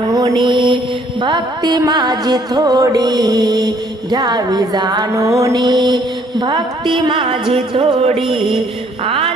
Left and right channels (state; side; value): normal; both; correlation 0.63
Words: भक्ती माझी थोडी। घ्यावी जाणूनी भक्ती माझी थोडी।